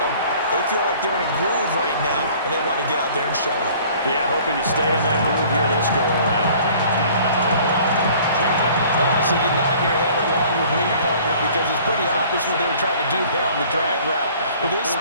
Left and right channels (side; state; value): both; inverted; correlation -0.52